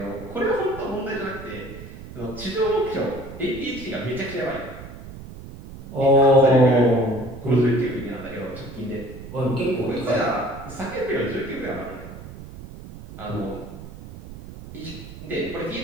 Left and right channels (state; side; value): noise; right; rumble, 14 dB below the sound